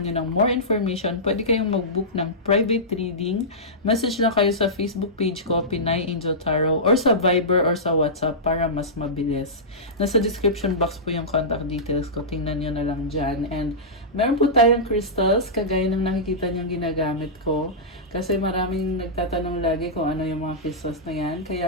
nyo ng more information, pwede kayong mag-book ng private reading. Message lang kayo sa Facebook page ko, Pinay Angel Tarot, or sa Viber or sa WhatsApp para mas mabilis. Nasa description box po yung contact details ko. Tingnan nyo na lang dyan. And meron po tayong crystals, kagaya ng nakikita nyo ginagamit ko. Kasi maraming nagtatanong lagi kung ano yung mga crystals na yan.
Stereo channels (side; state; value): both; normal; correlation -0.15